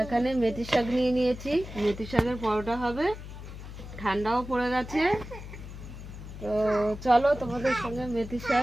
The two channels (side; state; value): left; noise; hum, 12 dB below the sound